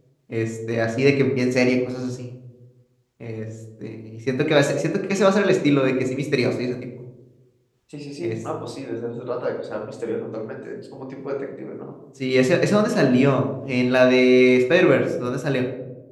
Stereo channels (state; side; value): identical; both; correlation 1.00